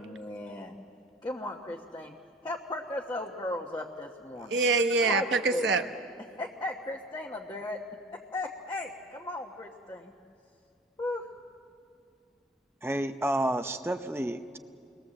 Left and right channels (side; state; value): both; normal; correlation 0.43